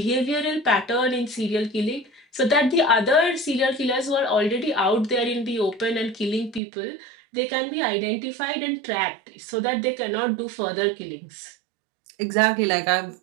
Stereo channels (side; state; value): left; drops out; at 6.6 s